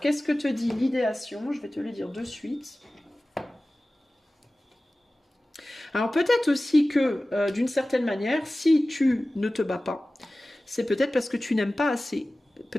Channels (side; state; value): both; normal; correlation 0.97